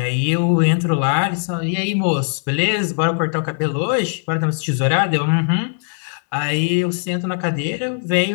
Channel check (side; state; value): right; silent; digital silence